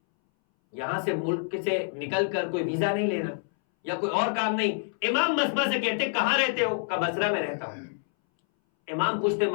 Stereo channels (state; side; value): silent; right; 60 dB below the other